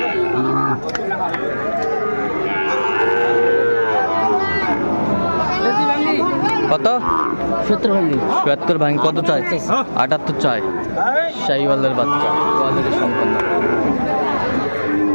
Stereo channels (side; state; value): both; inverted; correlation -1.00